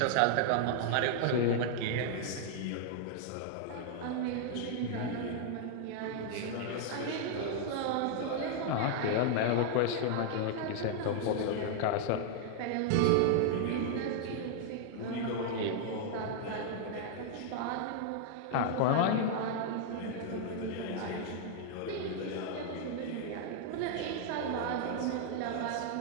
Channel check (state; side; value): different; both; correlation 0.00